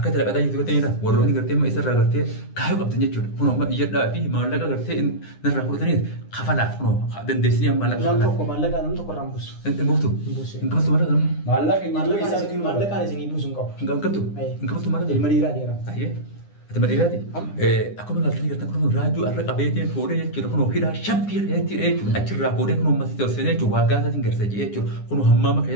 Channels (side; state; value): right; late; 9.8 ms